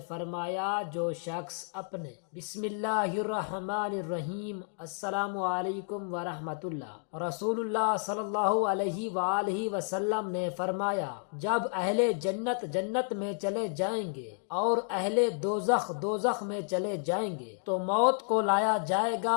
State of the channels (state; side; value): silent; right; 57 dB below the other